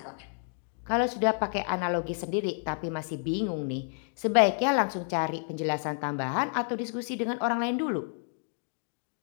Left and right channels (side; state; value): right; silent; 58 dB below the other